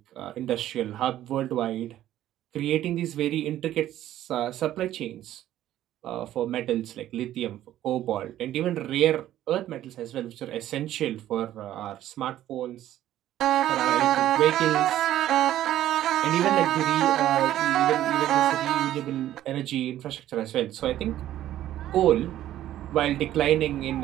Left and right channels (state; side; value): quieter; left; 12.9 dB